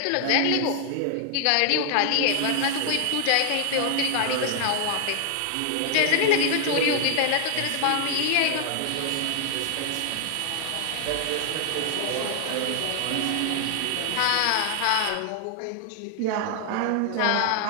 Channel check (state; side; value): different; both; correlation 0.00